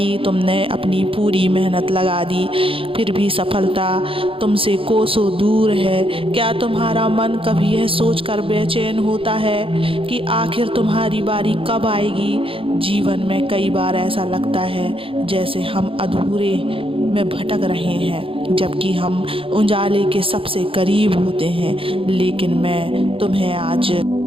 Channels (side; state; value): left; late; 0.26 ms